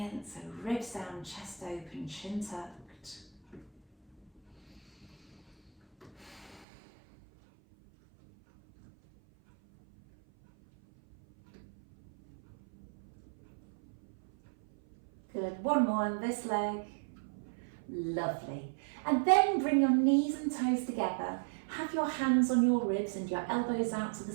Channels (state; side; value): drops out; left; at 6.7 s